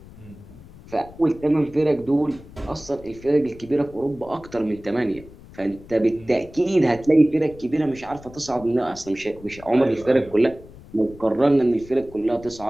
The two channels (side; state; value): left; noise; rumble, 19 dB below the sound